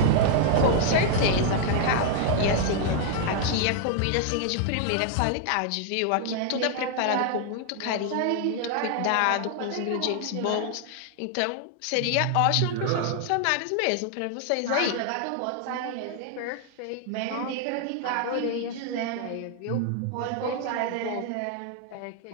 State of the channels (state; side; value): different; both; correlation 0.00